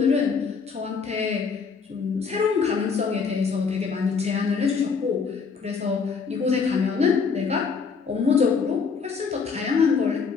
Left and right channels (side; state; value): right; quieter; 5.5 dB